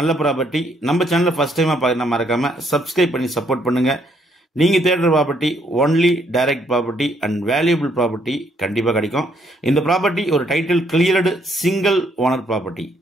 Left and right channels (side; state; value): both; normal; correlation 0.70